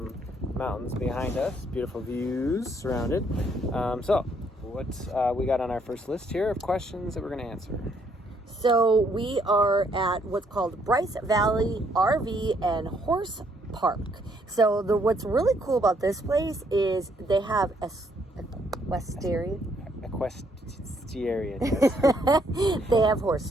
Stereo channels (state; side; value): normal; both; correlation 0.69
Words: mountains behind us, beautiful views surrounded. So what we got on our first list here of questions that we're going to answer? So we are at what's called Bryce Valley RV and Horse Park. So what's really cool about this place is they have equestrian. They have horse